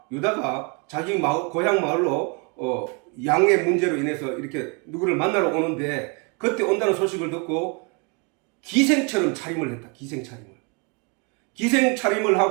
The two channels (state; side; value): quieter; left; 33.7 dB